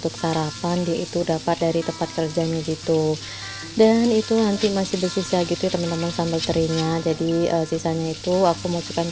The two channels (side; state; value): both; identical; correlation 1.00